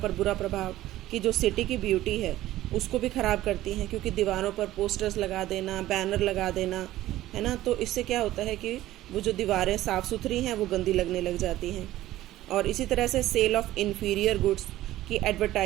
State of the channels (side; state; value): left; quieter; 15.1 dB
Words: बुरा प्रभाव, कि जो सिटी की ब्यूटी है उसको भी ख़राब करती हैं, क्योंकि दीवारों पर पोस्टर्स लगा देना, बैनर लगा देना, है ना, तो इससे क्या होता है कि वो जो दीवारें साफ़ सुथरी हैं वो गंदी लगने लग जाती हैं। और इसी तरह से सेल ऑफ इन्फीरियर गुड्स, कि